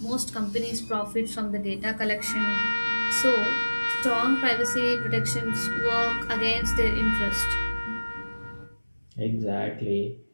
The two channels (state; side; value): inverted; both; correlation -1.00